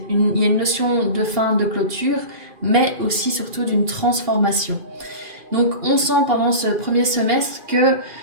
il y a une notion de fin, de clôture, mais aussi surtout d'une transformation. Donc on sent pendant ce premier semestre que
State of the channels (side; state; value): left; late; 2.4 ms